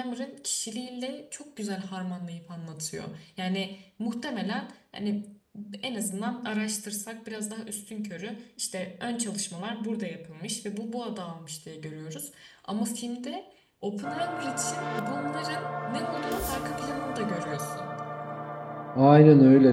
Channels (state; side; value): identical; both; correlation 1.00